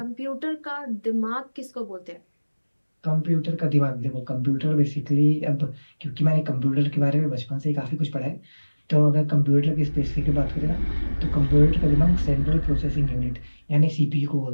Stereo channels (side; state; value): both; inverted; correlation -1.00